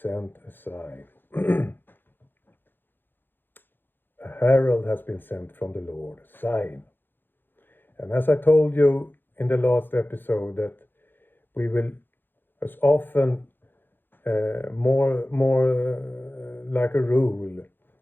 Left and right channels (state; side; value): late; right; 0.097 ms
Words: a sign. A herald has been sent from the Lord, a sign. And as I told you in the last episode, that we will, as often, more like a rule,